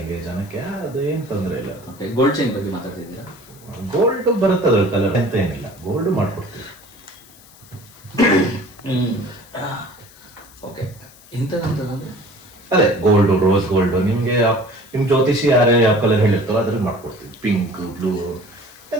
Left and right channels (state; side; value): noise; left; hiss, 24 dB below the sound